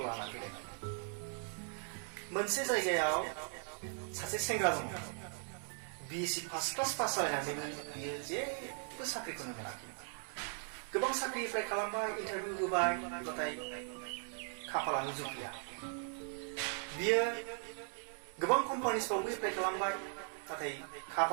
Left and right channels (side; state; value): left; silent; 52 dB below the other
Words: लाना फैदों। मोनसे जायगायाव सासे सेंग्रा दङ। BSc फार्स्ट क्लास पास जानानैबो बियो जेबो साख्रिखौनो मोनाखै। गोबां साख्रि एप्लाइ खालामबाय, इन्टारभिउ होबाय, नाथाय खाफालानो जुफिया। बियो गोबां कम्पानिसफ्रावबो एप्लाइ खालामबाय, नाथाय